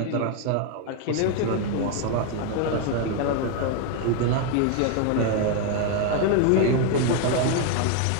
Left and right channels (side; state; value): both; different; correlation 0.01